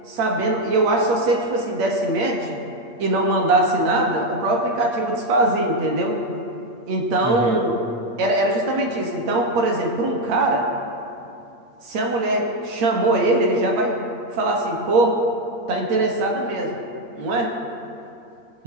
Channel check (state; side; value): late; left; 8.6 ms